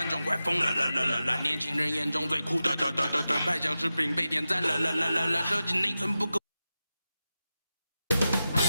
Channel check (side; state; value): both; inverted; correlation -0.93